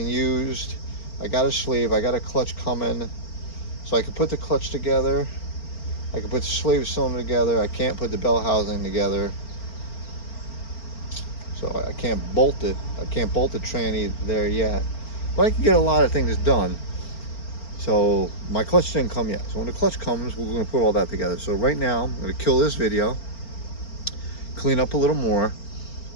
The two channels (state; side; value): late; right; 4.4 ms